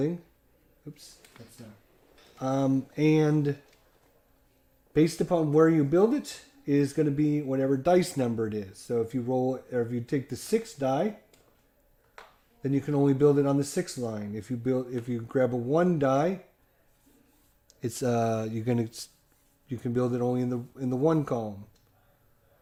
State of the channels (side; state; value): both; identical; correlation 1.00